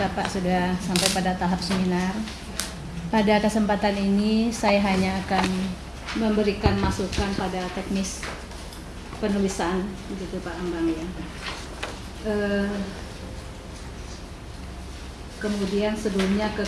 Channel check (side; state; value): both; identical; correlation 1.00